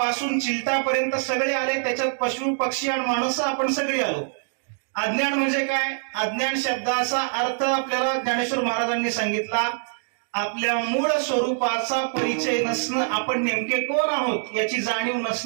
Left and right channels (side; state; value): left; silent; digital silence